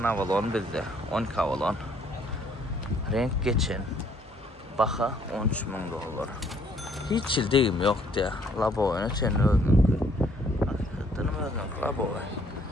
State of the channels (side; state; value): both; normal; correlation 0.64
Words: Avalon bizde 12 Avalon. Renk geçen. Baka 13 min dolar. Hiç ildiğim yok diye. Labo oyunu senin öldün. Hakikaten öldün. Labo oyunu.